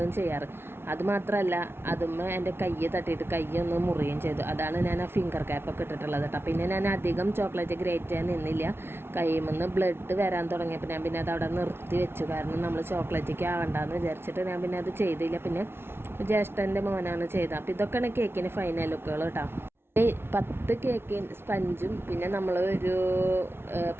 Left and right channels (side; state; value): left; late; 0.12 ms